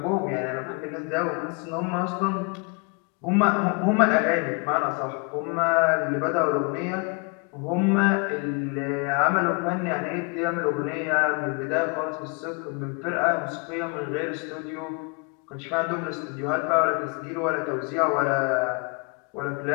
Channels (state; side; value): quieter; right; 33.5 dB